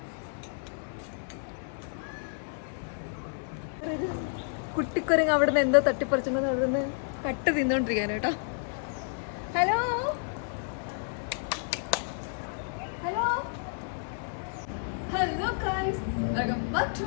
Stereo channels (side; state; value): right; silent; 56 dB below the other